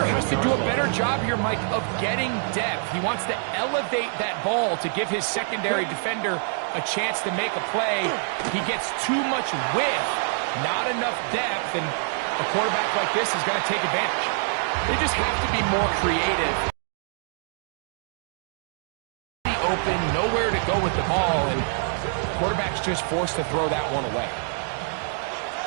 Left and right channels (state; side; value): silent; left; digital silence